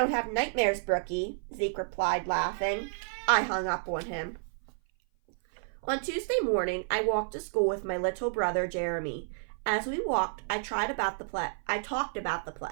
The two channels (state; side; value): silent; left; 56 dB below the other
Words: have nightmares, Brookie, Zeke replied, laughing. I hung up on him. On Tuesday morning, I walked to school with my little brother, Jeremy. As we walked, I talked about the